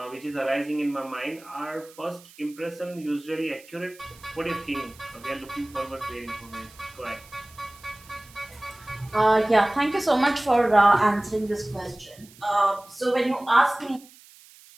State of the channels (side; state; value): right; noise; hiss, 23 dB below the sound